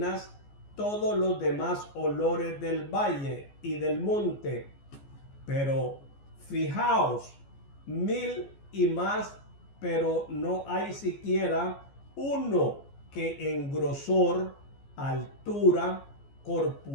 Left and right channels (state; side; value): late; right; 14 ms